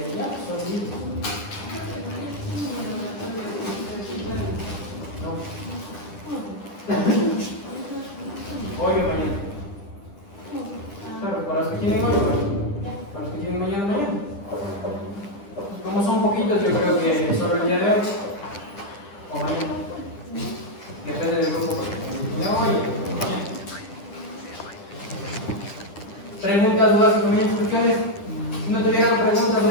ya, son listos. No. Hoy o mañana. Claro, para los que quieren hoy, para los que quieren mañana. Preguntas, dudas, comentarios, cuestiones. Si no tuvieran preguntas o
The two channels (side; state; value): right; late; 10 ms